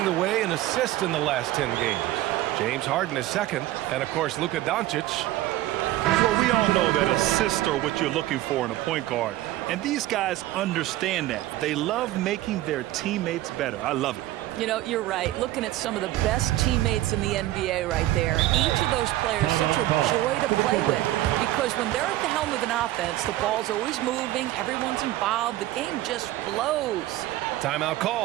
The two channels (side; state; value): left; quieter; 15.5 dB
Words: the way in assists in the last 10 games. James Harden is second, and of course Luka Doncic. Well, we all know that assists are what you're looking for in a point guard. And these guys understand that. They love making their teammates better. I love it. You know, you're right. Looking at some of the best teammates in the NBA right there. Each of those players such a joy to play with. Because when they're at the helm of an offense, the ball's always moving, everyone's involved, the game just flows. Timeout